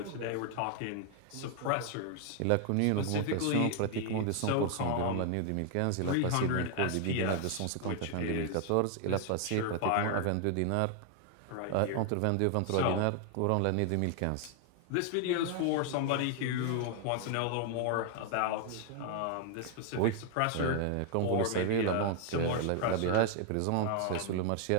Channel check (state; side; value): different; both; correlation 0.00